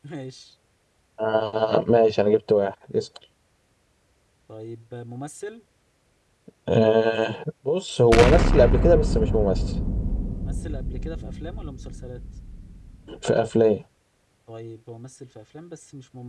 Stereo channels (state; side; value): identical; both; correlation 1.00